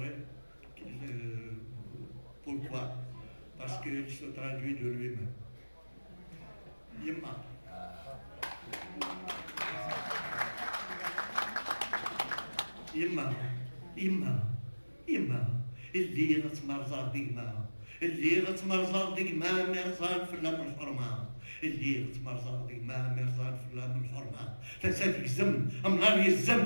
pourquoi. Parce qu'il se traduit de lui-même. Yimma. يما اللي غتمرزر ديما اللي غتمرزر ديما مرزان في اللام الحرمة اللي غتمرزر ديما مرزان في اللام الحرمة فساد يزم امنار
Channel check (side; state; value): both; inverted; correlation -1.00